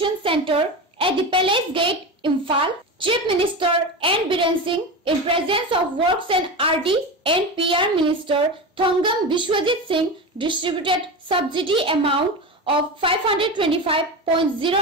Centre at the Palace Gate, Imphal. Chief Minister N. Biren Singh, in presence of Works and RD and PR Minister Thongam Bishwajit Singh, distributed subsidy amount of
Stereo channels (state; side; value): normal; both; correlation 0.23